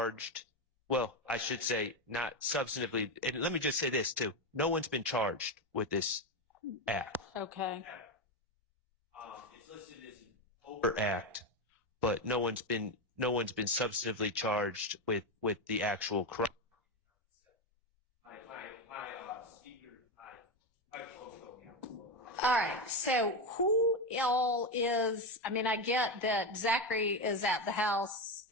well, I should say not substantively, and let me just say this too, no one's been charged with this act. Okay. It's listed as an overt act, but no one's been substantively charged with the actual crime. All right, so who all is, I mean, I get that Zachary is at the house,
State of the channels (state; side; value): normal; both; correlation 0.12